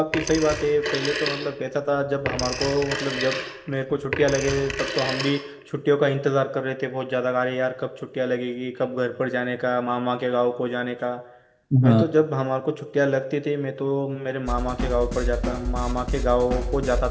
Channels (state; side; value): identical; both; correlation 1.00